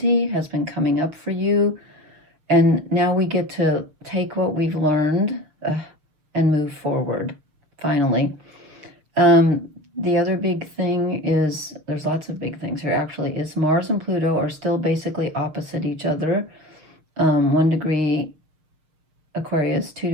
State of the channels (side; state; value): left; late; 6.4 ms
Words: has been coming up for you. And now we get to take what we've learned and move forward, finally. The other big thing is, there's lots of big things here actually, is Mars and Pluto are still basically opposite each other. 1 degree Aquarius, 2